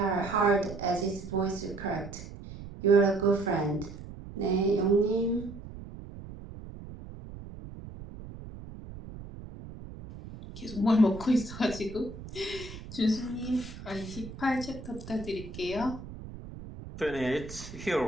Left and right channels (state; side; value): noise; right; rumble, 13 dB below the sound